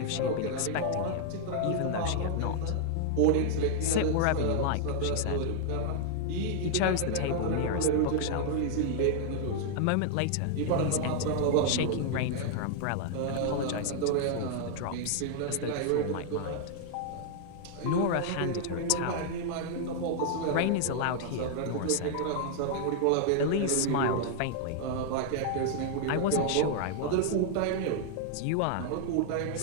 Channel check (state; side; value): different; both; correlation 0.00